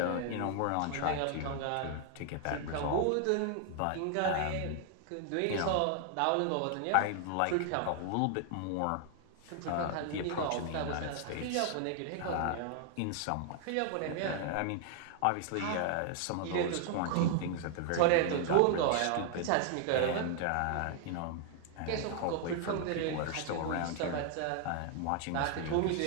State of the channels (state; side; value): different; both; correlation 0.00